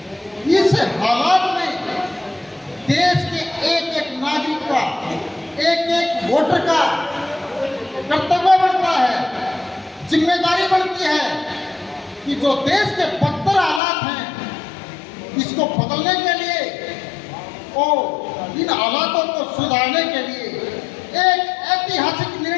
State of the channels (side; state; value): right; drops out; at 13.8 s